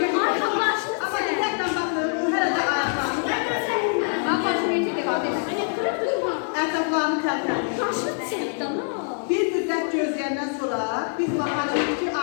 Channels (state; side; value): silent; right; 56 dB below the other